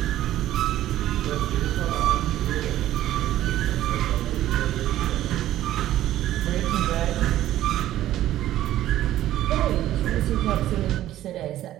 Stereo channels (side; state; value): left; quieter; 13.5 dB